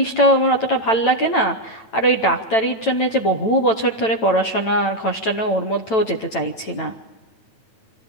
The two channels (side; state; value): right; late; 9.0 ms